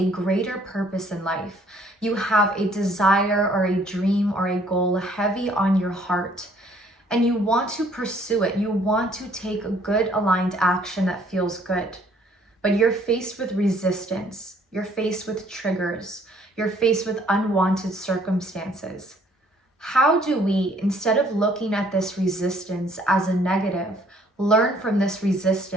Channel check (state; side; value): normal; both; correlation 0.62